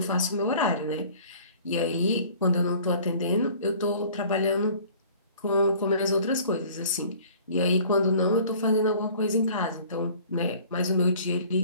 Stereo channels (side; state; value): both; inverted; correlation -0.50